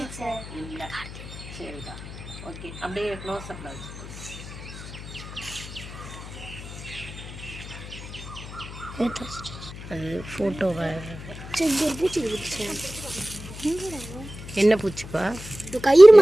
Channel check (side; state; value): left; noise; hum, 13 dB below the sound